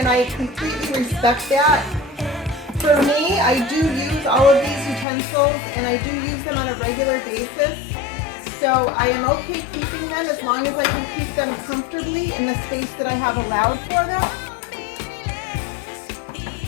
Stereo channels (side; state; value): right; drops out; at 5.1 s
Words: I completely respect that. For me, I do use all of these utensils, and I do use them on a regular basis. So I am okay keeping them as long as I can keep them comfortably in the space that I have allowed for them.